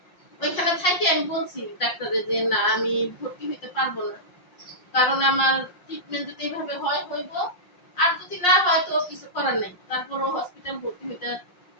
ওইখানে থাকি, আমি বলছি ডাক্তারে যে না, আমি ভর্তি হইতে পারবো না। কারণ আমার ট্রিটমেন্ট যদি এভাবে হয় হইব, আর যদি না হয় তো কিছু করার নাই, তারপরও হসপিটাল ভর্তি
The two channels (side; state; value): right; late; 5.6 ms